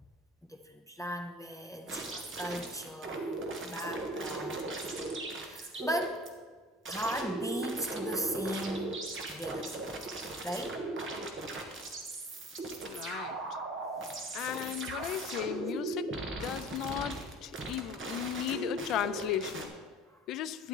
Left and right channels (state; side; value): normal; both; correlation 0.44